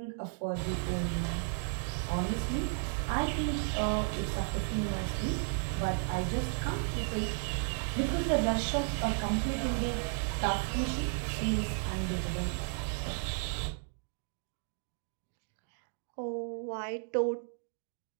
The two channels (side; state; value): left; silent; 55 dB below the other